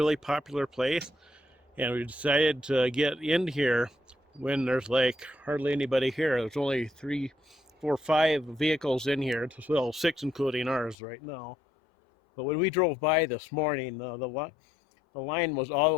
popular place, and we decided to get in here when there's like hardly anybody here. There's only 3, 4, 5 vehicles in here, well, 6 including ours right now. But when we drove by this morning, the line was all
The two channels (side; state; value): right; drops out; at 11.0 s